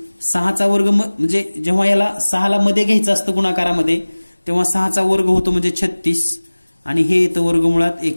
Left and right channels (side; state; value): both; inverted; correlation -1.00